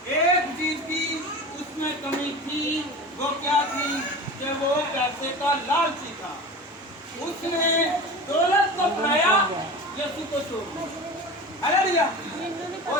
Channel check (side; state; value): both; normal; correlation 0.32